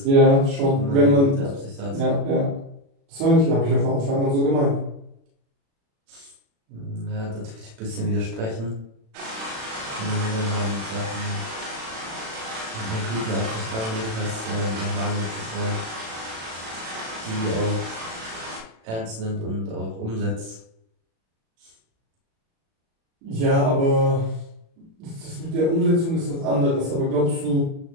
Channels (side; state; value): left; late; 36 ms